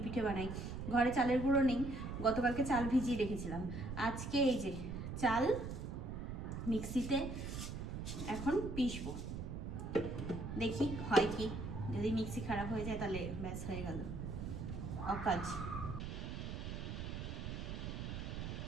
পিঠে বানাই। ঘরে চালের গুঁড়ো নেই, গতকালকে চাল ভিজিয়ে রেখেছিলাম, আজকে এই যে চাল মিক্সিতে এখন পিসবো, দেখি হয় কি, যদি মিক্সি খারাপ হয়ে যায় তাহলে ব্যাস হয়ে গেল অকাজ।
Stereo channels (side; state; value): right; noise; rumble, 5 dB below the sound